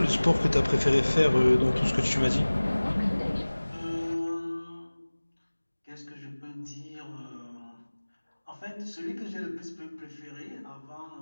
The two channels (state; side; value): inverted; both; correlation -1.00